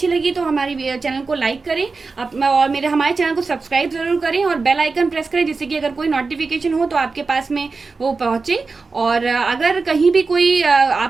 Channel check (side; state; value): left; quieter; 4.2 dB